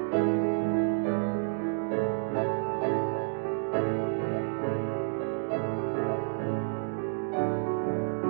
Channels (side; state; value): left; silent; digital silence